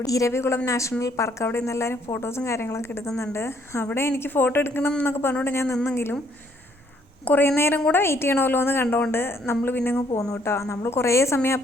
ഇരവികുളം നാഷണൽ പാർക്ക്, അവിടെ നിന്ന് എല്ലാവരും ഫോട്ടോസും കാര്യങ്ങളൊക്കെ എടുക്കുന്നുണ്ട്. അവിടെ എനിക്ക് ഫോട്ടോ എടുക്കണം എന്നൊക്കെ പറഞ്ഞുകൊണ്ട് ഞാൻ നിന്നെങ്കിലും കുറേ നേരം കൂടെ വെയിറ്റ് ചെയ്യണമല്ലോ എന്ന് കണ്ടുകൊണ്ട് നമ്മൾ പിന്നെ അങ്ങ് പോന്നു കേട്ടോ. നമ്മൾ കുറേ സമയം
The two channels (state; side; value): normal; both; correlation 0.67